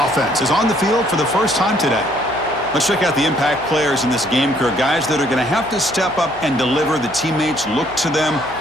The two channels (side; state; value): left; noise; hum, 19 dB below the sound